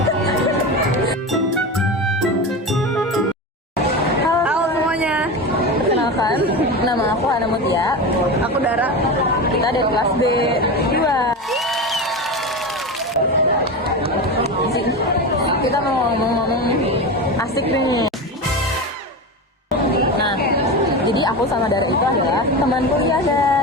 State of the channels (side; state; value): both; normal; correlation 0.23